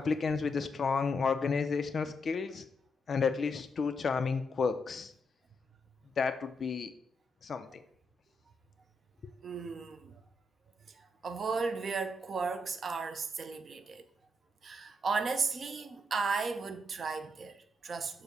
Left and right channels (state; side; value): normal; both; correlation 0.81